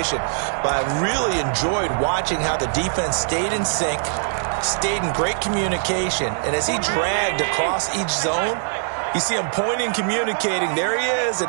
But I really enjoyed watching how the defense stayed in sync, stayed in great communication. And as he dragged across each zone, you see him pointing, communicating. There he is,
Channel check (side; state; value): left; silent; digital silence